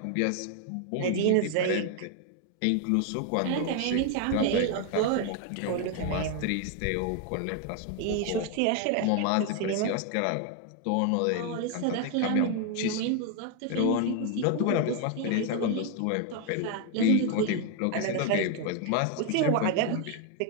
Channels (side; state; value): both; different; correlation 0.01